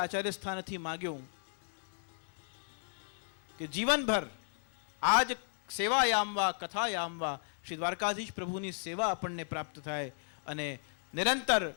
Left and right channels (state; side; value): silent; right; digital silence